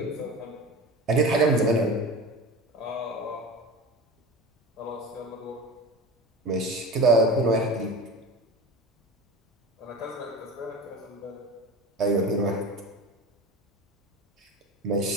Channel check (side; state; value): both; normal; correlation 0.32